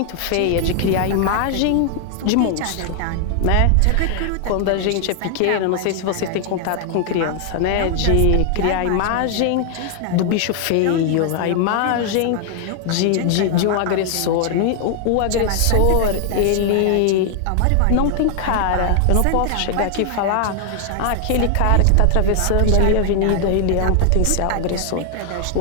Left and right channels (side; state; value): both; different; correlation 0.00